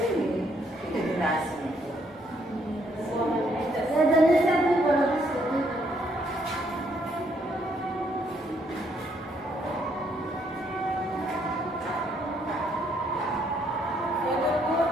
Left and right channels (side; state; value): both; normal; correlation 0.70